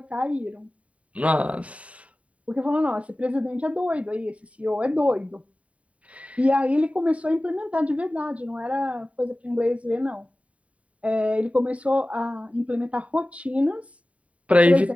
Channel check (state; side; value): late; left; 0.066 ms